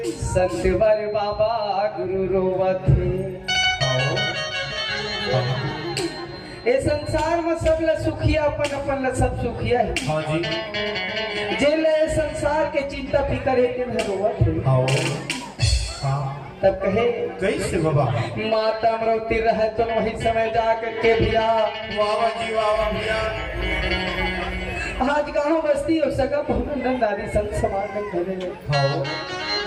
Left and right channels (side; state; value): both; identical; correlation 1.00